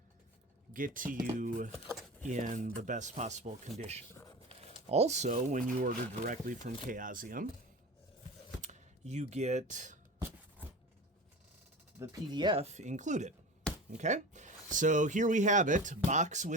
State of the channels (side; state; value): both; normal; correlation 0.32